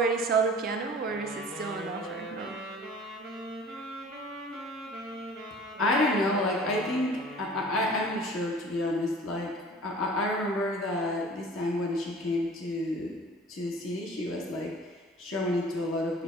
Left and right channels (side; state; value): both; normal; correlation 0.46